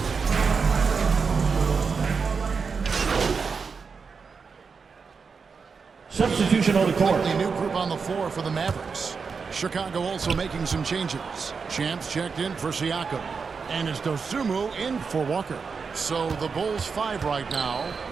Substitution on the court. Completely new group on the floor for the Mavericks. Chicago also making some changes. Champs checked in for Siakam. And it's Dosunmu in for Walker. So the Bulls 5 right now.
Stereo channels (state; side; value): quieter; left; 5.3 dB